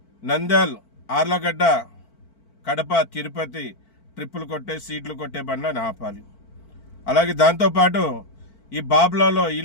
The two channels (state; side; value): late; right; 4.5 ms